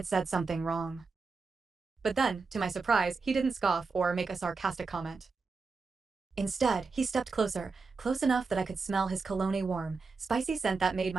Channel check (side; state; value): left; quieter; 4.4 dB